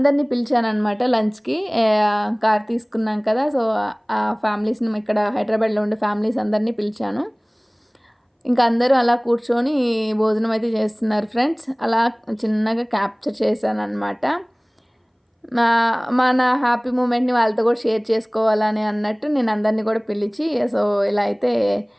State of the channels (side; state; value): both; identical; correlation 1.00